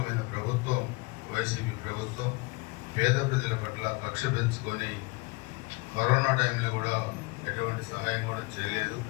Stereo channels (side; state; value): right; quieter; 25.8 dB